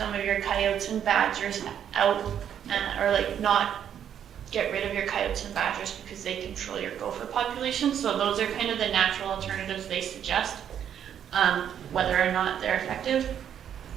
of your coyotes and badgers out, or like not get rid of your coyotes and badgers because they control your gopher population. So those are kind of the natural alternatives they suggest. Whether or not they're effective,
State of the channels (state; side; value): quieter; left; 9.2 dB